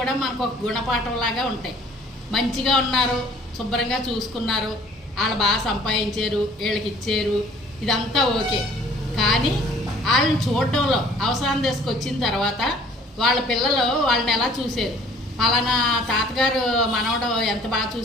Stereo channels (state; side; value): normal; both; correlation 0.54